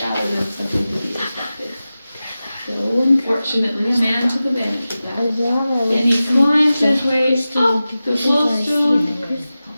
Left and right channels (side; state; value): both; inverted; correlation -0.95